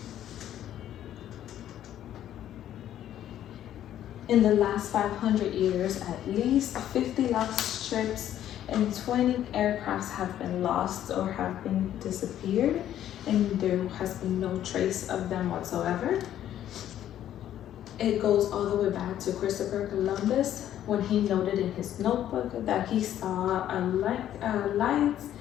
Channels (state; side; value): quieter; right; 11.4 dB